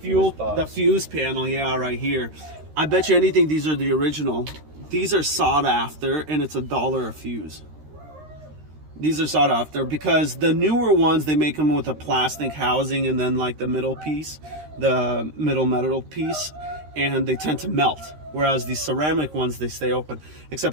fuse panel, yeah, right here. I bet you anything these are the original. These are sought after, and it's $1 a fuse. These are sought after because the newer ones, they make them with a plastic housing and then like the middle piece, the middle metal piece, and they tend to melt. Whereas these ceramic ones, they stay open.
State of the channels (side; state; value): left; late; 13 ms